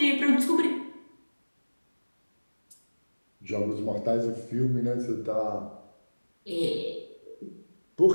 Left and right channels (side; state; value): both; inverted; correlation -1.00